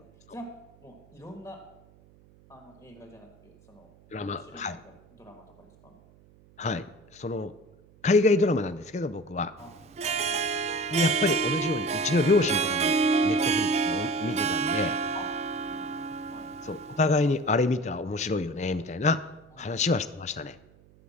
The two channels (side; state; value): right; noise; hum, 28 dB below the sound